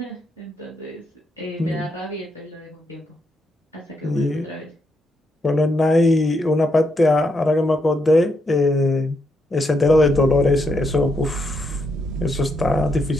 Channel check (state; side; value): normal; both; correlation 0.79